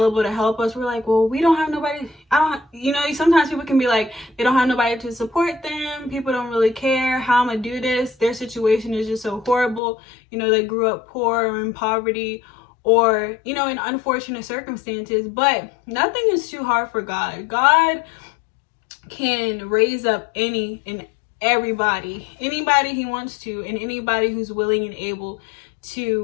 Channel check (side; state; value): right; drops out; at 9.8 s